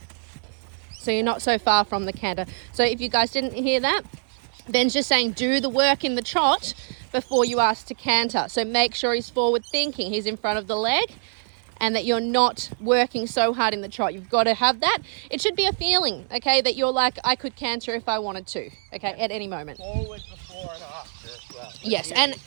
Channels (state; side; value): silent; left; 61 dB below the other